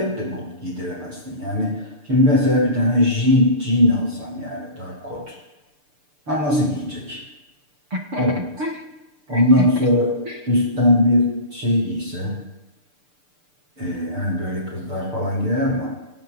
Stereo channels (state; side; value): late; left; 6.8 ms